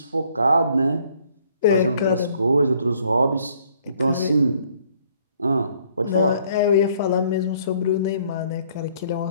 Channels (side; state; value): both; inverted; correlation -0.63